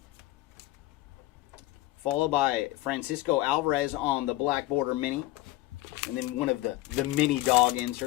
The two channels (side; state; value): right; quieter; 17.5 dB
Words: Followed by Francisco Alvarez on the black border mini. And then one of the mini dog